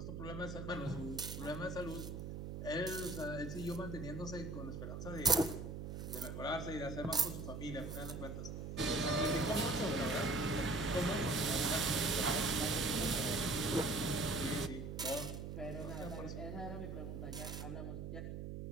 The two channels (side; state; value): right; noise; hum, 6 dB below the sound